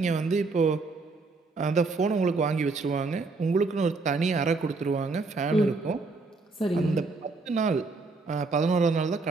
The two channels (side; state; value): left; quieter; 3.9 dB